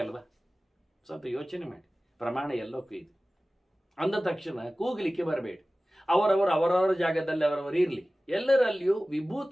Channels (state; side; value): normal; both; correlation 0.97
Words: ಅಲ್ವಾ? ಸ್ವಲ್ಪ ಯೋಚನೆ ಮಾಡಿ. ಪ್ರಮಾಣ ಎಲ್ಲಕ್ಕೂ ಇದೆ. ಅಂದ ತಕ್ಷಣ ಕೂಗಲಿಕ್ಕೆ ಬರಬೇಡಿ. ಅವರವರ ಜಾಗದಲ್ಲಿ ಅವರವರು ಇರಲಿ. ಎಲ್ಲರಲ್ಲಿಯೂ